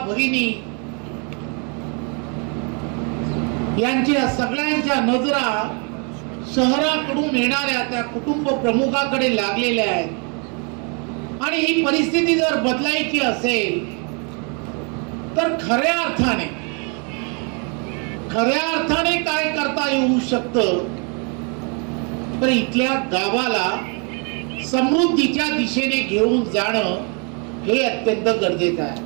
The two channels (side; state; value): left; quieter; 36.2 dB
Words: भगिनी यांच्या सगळ्यांच्या नजरा शहराकडून येणाऱ्या त्या कुटुंब प्रमुखाकडे लागलेल्या आहेत आणि ही परिस्थिती जर बदलायची असेल तर खऱ्या अर्थाने काय करता येऊ शकतं, तर इथल्या गावाला समृद्धीच्या दिशेने घेऊन जाणं हे अत्यंत गरजेचं आहे.